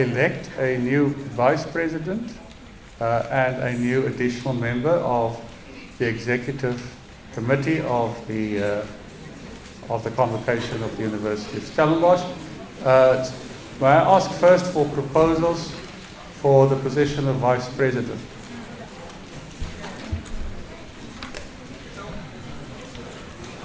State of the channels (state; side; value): identical; both; correlation 1.00